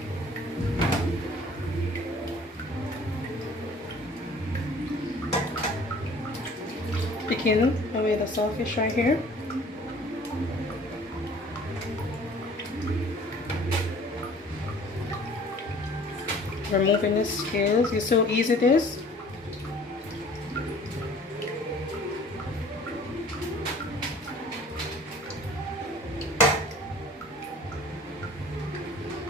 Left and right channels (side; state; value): both; normal; correlation 0.50